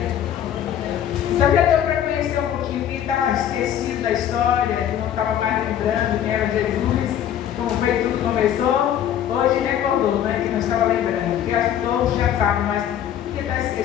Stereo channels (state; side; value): quieter; right; 10.3 dB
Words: Então já deu para conhecer um pouquinho quem estava esquecido da história, que não estava mais lembrando quem era Jesus, como foi tudo começou. Hoje recordou, né, que não estava lembrando. Porque acho que todos já sabem, mas porque está